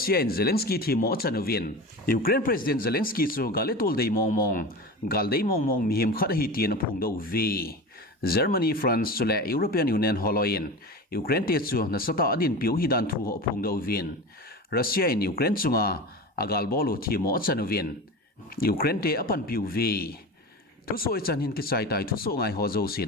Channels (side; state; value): both; normal; correlation 0.29